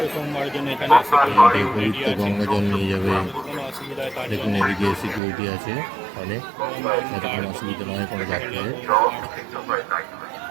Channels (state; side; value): drops out; left; at 5.2 s